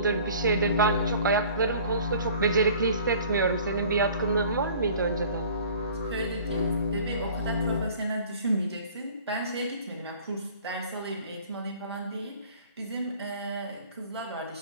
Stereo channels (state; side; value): inverted; both; correlation -0.48